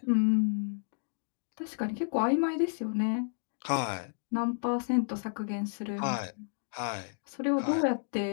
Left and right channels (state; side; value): silent; right; digital silence